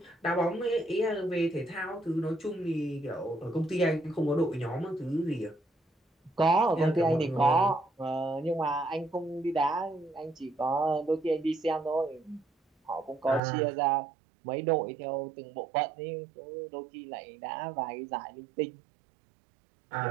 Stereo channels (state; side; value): drops out; left; at 13.4 s